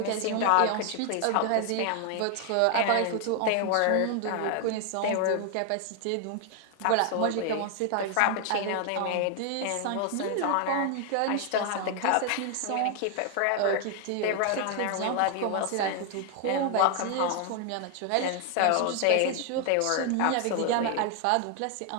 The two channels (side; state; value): both; different; correlation 0.00